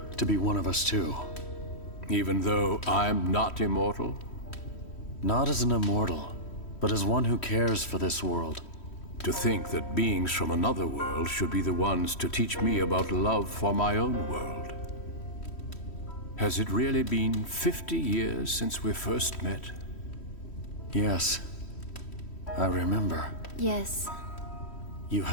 to be one of us too. Even though I'm not immortal? Not as an immortal, but as one who cares for this world. To think that beings from another world should be the ones to teach me about love for my own world. Has it really been 50 years since we first met? Yes. I remember. Yes. You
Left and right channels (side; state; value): right; late; 3.1 ms